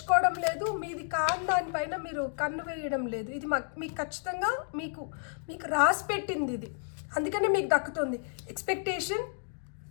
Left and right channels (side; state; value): right; silent; 57 dB below the other